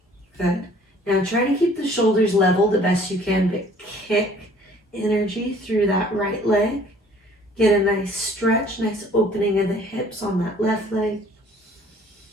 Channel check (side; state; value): both; normal; correlation 0.55